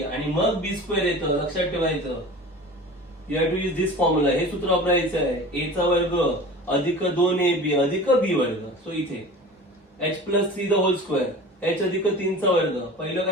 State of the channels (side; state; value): both; normal; correlation 0.38